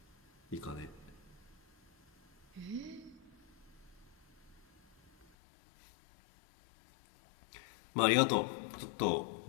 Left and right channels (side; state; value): right; drops out; at 5.2 s